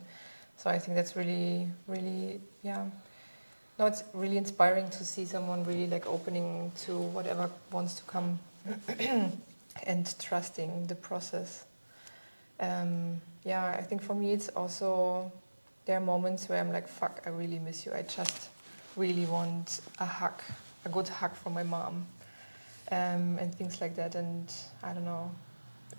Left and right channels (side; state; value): both; inverted; correlation -1.00